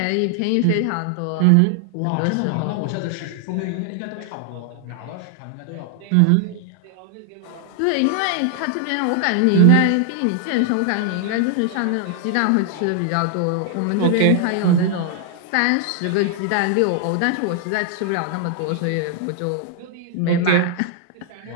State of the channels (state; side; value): different; both; correlation 0.00